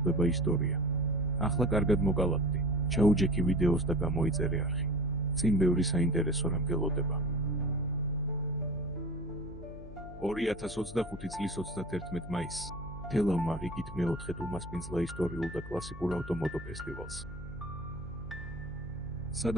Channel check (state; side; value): noise; left; hum, 16 dB below the sound